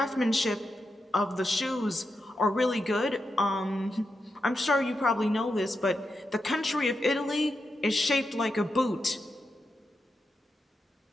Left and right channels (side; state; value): both; normal; correlation 0.87